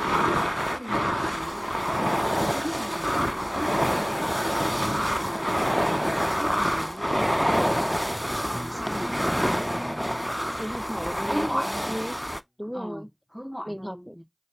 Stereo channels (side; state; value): both; identical; correlation 1.00